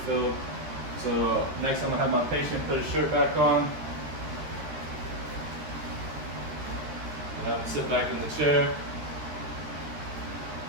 So next I'm going to have my patient put his shirt back on. And I'm going to sit back in the chair.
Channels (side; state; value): left; late; 13 ms